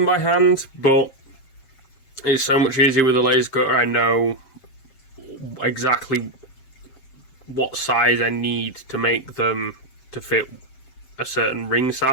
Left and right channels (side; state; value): right; late; 7.6 ms